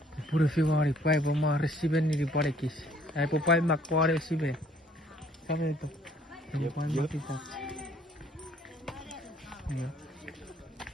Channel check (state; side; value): normal; both; correlation 0.60